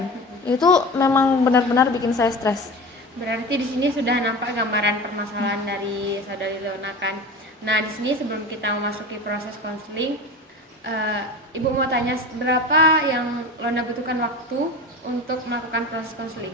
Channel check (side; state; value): both; normal; correlation 0.32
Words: Itu memang benar-benar bikin saya stres. Berarti di sini sudah nampak gambaran permasalahan dari saudari Leona kan. Nah, di sini sebelum kita memasuki proses konseling, Ibu mau tanya berapa yang Lona butuhkan waktu untuk melakukan proses